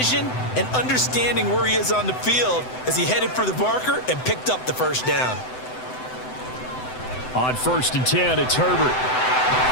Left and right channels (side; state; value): right; late; 7.9 ms